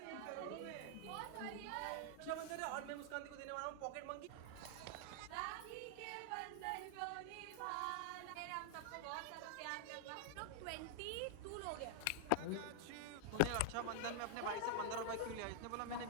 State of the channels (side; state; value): both; different; correlation 0.00